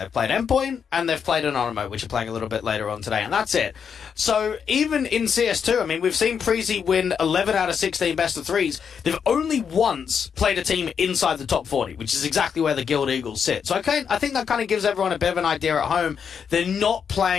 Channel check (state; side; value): quieter; right; 7.0 dB